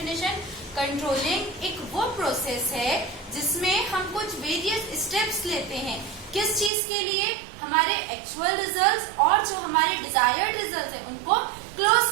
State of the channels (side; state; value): left; drops out; at 6.7 s